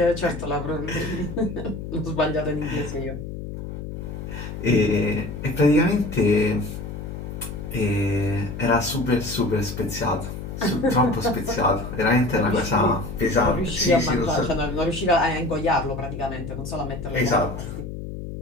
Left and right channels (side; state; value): left; noise; hum, 8 dB below the sound